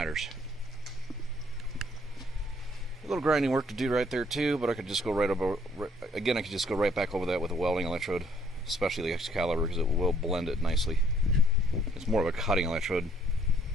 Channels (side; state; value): both; normal; correlation 0.64